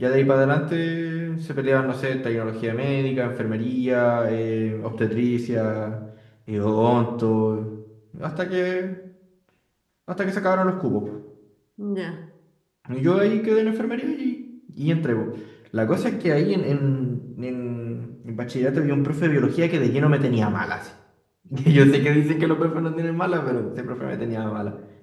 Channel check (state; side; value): identical; both; correlation 1.00